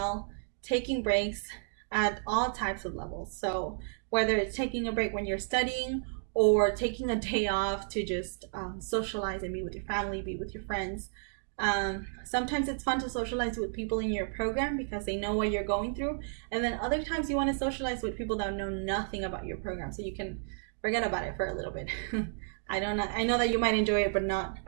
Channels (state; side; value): silent; left; digital silence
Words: taking breaks at all types of levels. So whether it's taking a break when you're studying or taking a day off to just socialize and be with your family, be with your friends. Sometimes it's fun to socialize with people in your program because they know what you're going through. And then other times you want to socialize with people that know nothing about your program so you can forget about it for a little bit. I know that you might enjoy it, but not